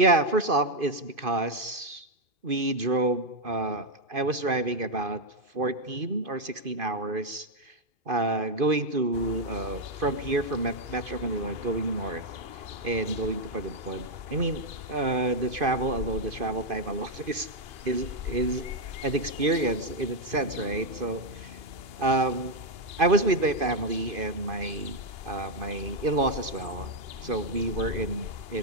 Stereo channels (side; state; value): left; late; 2.5 ms